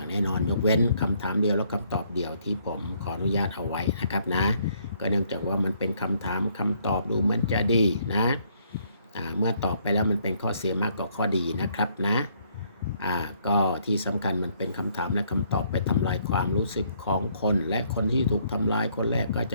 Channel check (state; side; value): inverted; both; correlation -0.68